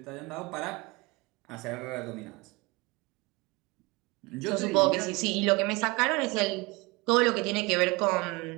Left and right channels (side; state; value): left; quieter; 25.1 dB